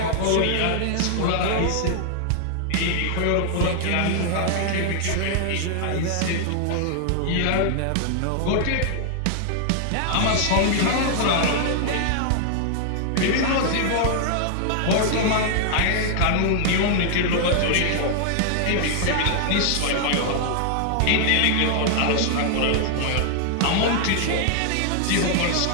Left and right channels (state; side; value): different; both; correlation -0.01